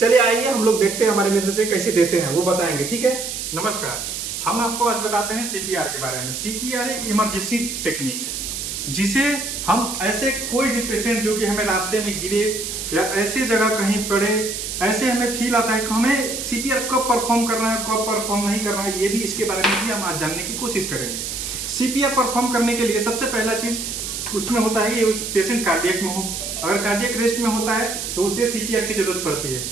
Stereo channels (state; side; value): noise; right; hiss, 5 dB below the sound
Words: चलिए आइए हम लोग देखते हैं हमारे मित्र से कैसे देते हैं, वो बताएंगे, ठीक है। नमस्कार, हम आपको आज बताते हैं CPR के बारे में। CPR एक इमरजेंसी टेक्निक है जिसे हम ऐसे कोई भी पेशेंट जो कि हमें रास्ते में गिरे या ऐसे जगह कहीं पड़े, ऐसे हमें फील आता है कि हमें CPR कब परफॉर्म करना है, कब परफॉर्म नहीं करना है, ये भी इसके बारे में भी हम आज जानने की कोशिश करेंगे। CPR परफॉर्म करने के लिए सबसे पहला चीज उसमें होता है कि उस पेशेंट कार्डियक में हो। अगर कार्डियक रेस्ट में होता है तो उसे CPR की जरूरत पड़ती है।